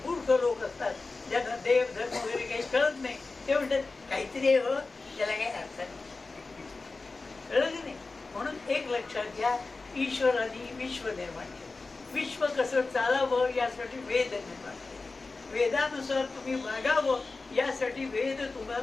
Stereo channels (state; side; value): quieter; right; 3.8 dB